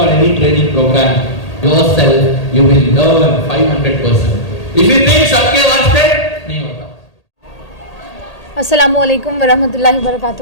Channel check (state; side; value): late; right; 1.8 ms